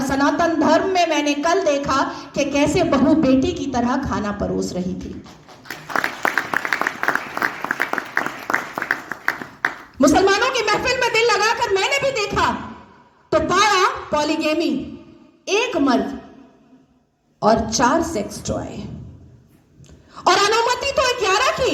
सनातन धर्म में मैंने कल देखा कि कैसे बहू बेटी की तरह खाना परोस रही थी। मुसलमानों की महफिल में दिल लगाकर मैंने भी देखा तो पाया पॉलीगेमी, एक मर्द और 4 सेक्स टॉय। और अनुमति तो 11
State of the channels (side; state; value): both; identical; correlation 1.00